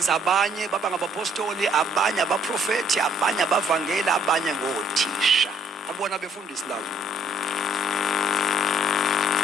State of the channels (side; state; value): both; normal; correlation 0.63